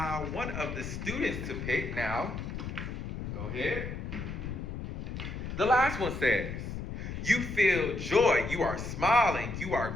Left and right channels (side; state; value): left; noise; rumble, 6 dB below the sound